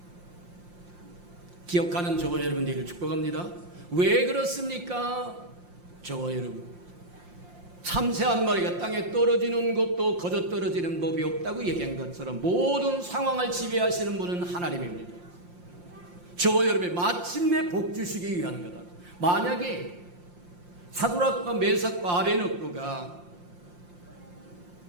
기억하는 저와 여러분들을 축복합니다. 왜 그렇습니까? 저와 여러분, 참새 한 마리가 땅에 떨어지는 것도 거저 떨어지는 법이 없다고 얘기한 것처럼 모든 상황을 지배하시는 분은 하나님입니다. 저와 여러분이 마침내 복 주시기 위한 거다. 만약에 사드락과 메삭과 아베느고가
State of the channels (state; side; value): late; left; 5.7 ms